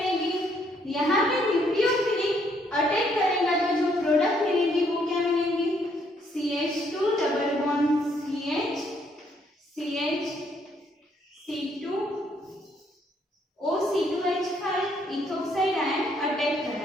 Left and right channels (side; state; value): both; normal; correlation 0.70